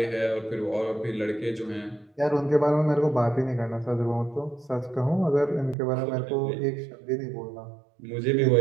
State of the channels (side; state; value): left; drops out; at 5.8 s